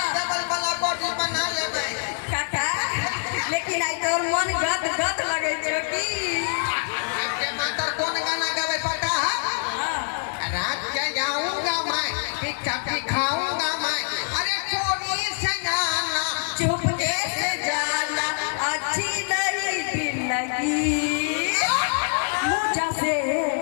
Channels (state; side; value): silent; right; digital silence